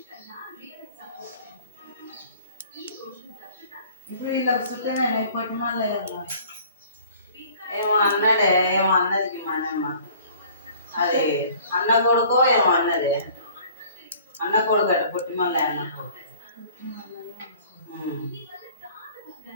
ఇప్పుడు వీళ్ళకి సుఖమేనా ఇప్పటి మళ్ళీ ఏమో అన్నాడే, ఏమో అన్నది మనమ్మ. అది అన్న కొడుకో ఏమో అన్నది. అన్న కొడుకు అట పుట్టి మళ్ళీ అన్న కొడుకు.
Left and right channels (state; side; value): inverted; both; correlation -0.51